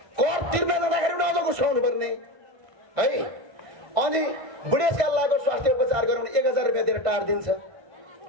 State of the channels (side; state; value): left; late; 1.5 ms